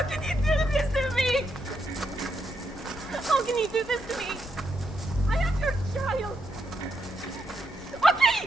can you do this to me? How can you do this to me? I am your child.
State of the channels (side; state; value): both; normal; correlation 0.80